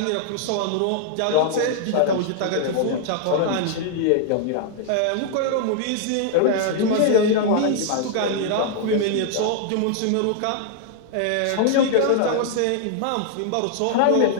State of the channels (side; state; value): both; different; correlation -0.01